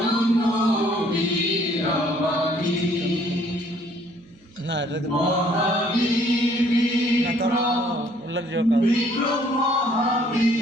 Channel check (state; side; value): noise; right; hum, 29 dB below the sound